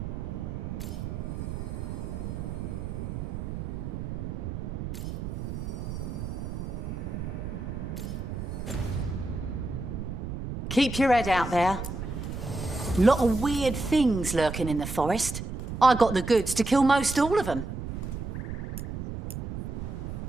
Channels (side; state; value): right; noise; rumble, 5 dB below the sound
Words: Keep your head out there. Lot of weird things lurking in the forest. I got the goods to kill most all of them.